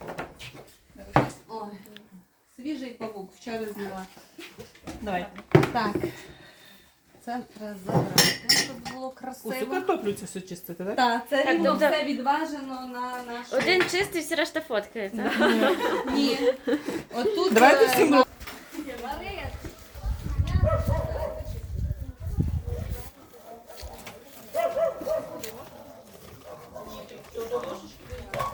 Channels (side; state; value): both; identical; correlation 1.00